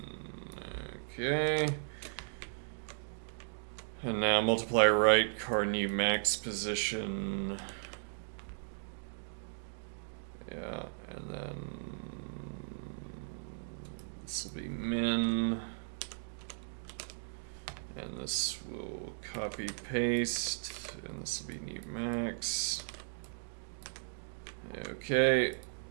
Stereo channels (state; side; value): silent; left; digital silence